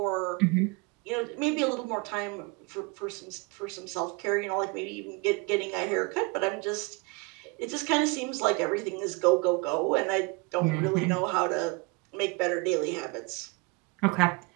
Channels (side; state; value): left; quieter; 28.8 dB